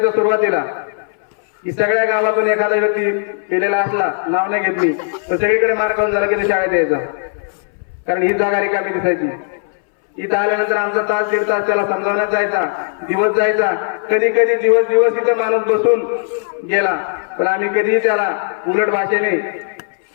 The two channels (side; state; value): right; silent; 64 dB below the other